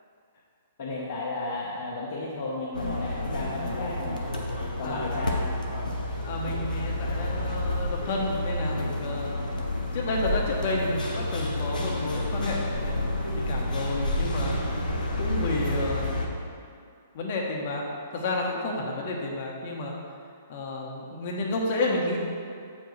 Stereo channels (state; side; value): inverted; both; correlation -0.63